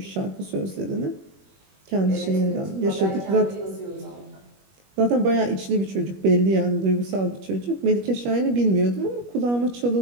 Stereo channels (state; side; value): late; left; 21 ms